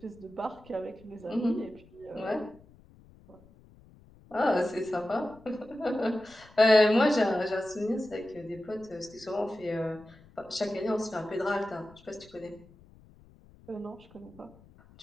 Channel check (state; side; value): noise; left; rumble, 25 dB below the sound